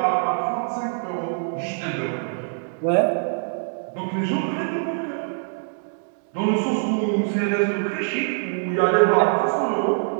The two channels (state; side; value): silent; left; 63 dB below the other